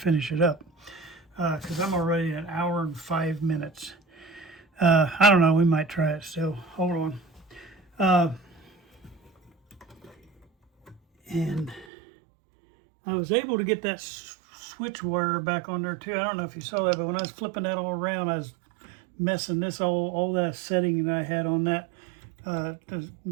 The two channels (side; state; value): left; drops out; at 11.9 s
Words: it up because I'm already at 1 hour and 5 minutes. I don't know. We might try it still. Hold on. And I was able to get that switch wire back on there too. I don't know if you saw that, but when I was flipping that all around, I was messing this all that setting that I had on that to